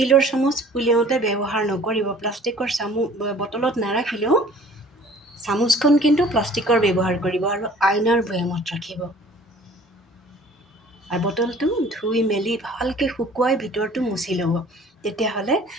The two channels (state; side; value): normal; both; correlation 0.50